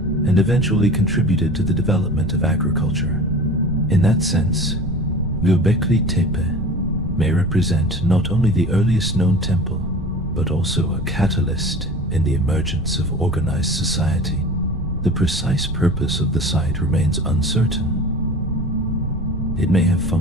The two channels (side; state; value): right; noise; rumble, 9 dB below the sound